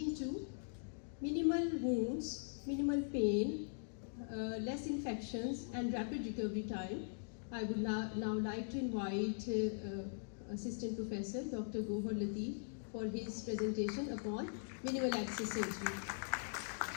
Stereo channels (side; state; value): right; silent; digital silence